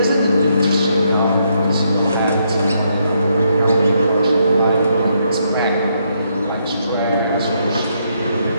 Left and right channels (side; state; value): both; inverted; correlation -0.75